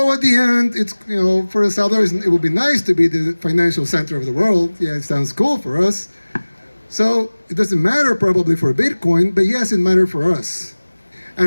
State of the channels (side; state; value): both; inverted; correlation -1.00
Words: at the end, it's, you know, for El Salvador, it would be nice to be the financial center of the world. Yeah, it sounds cool for us. So it doesn't matter probably for Bitcoin, but yes, it matters for us.